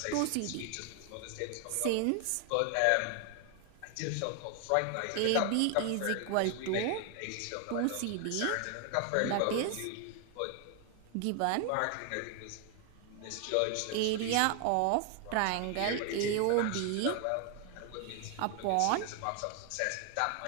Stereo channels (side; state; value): both; different; correlation 0.00